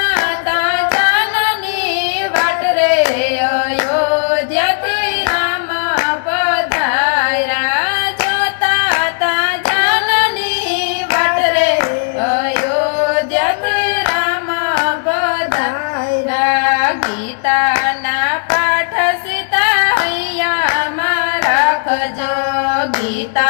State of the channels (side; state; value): right; silent; digital silence